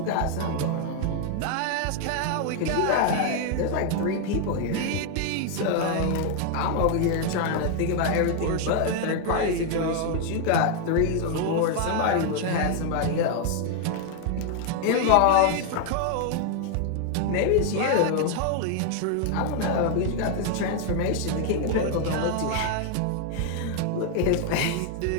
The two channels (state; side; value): different; both; correlation 0.00